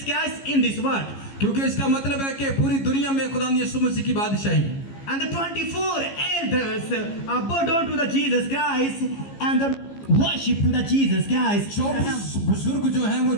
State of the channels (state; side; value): late; right; 15 ms